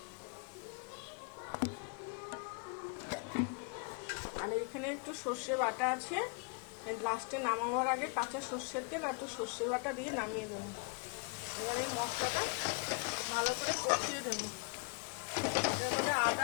আর এখানে একটু সর্ষে বাটা আছে। লাস্টে নামাবার আগে কাঁচা সর্ষের তেল আর একটু সর্ষে বাটা দিয়ে নামিয়ে দেবো। এবার এই মশলাটা ভালো করে কষিয়ে দেবো। এর মধ্যে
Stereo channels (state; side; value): quieter; right; 33.1 dB